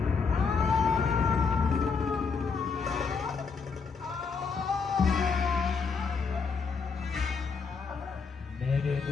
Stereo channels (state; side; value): quieter; right; 5.2 dB